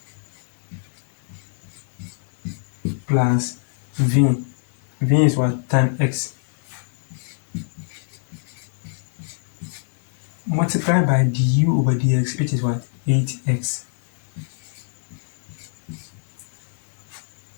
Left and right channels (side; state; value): right; silent; 61 dB below the other